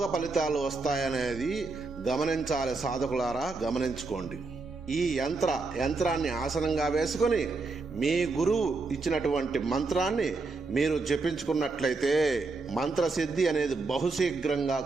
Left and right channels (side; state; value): left; quieter; 3.8 dB